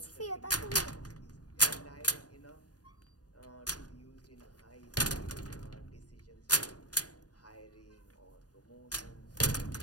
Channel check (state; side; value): late; right; 0.68 ms